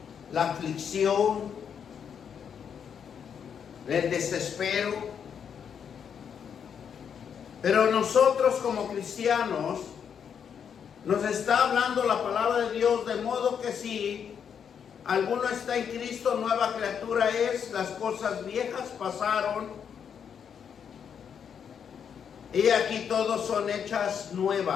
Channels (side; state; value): right; quieter; 7.6 dB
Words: la aflicción, el desespero. Pero nosotros como cristianos, nos está hablando la palabra de Dios, de modo que si alguno está en Cristo, nueva criatura es, las cosas viejas pasaron, y aquí todos son hechas